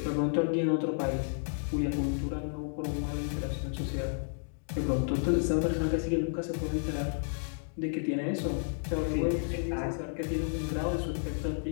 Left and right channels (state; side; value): silent; right; digital silence